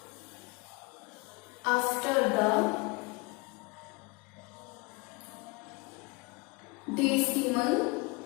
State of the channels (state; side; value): quieter; right; 27.7 dB